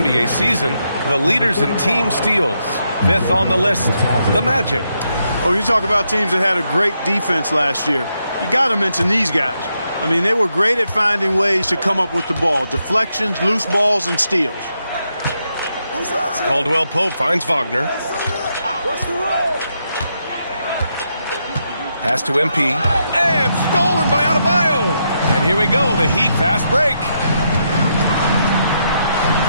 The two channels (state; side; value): inverted; both; correlation -0.81